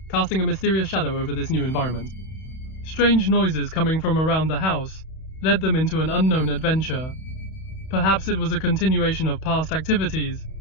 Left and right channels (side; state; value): right; late; 31 ms